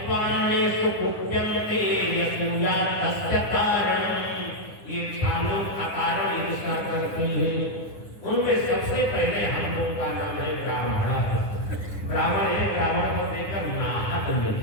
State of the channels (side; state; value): right; late; 9.8 ms